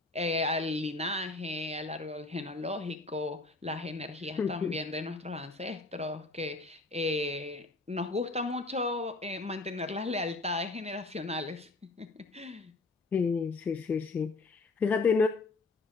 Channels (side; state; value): right; quieter; 3.4 dB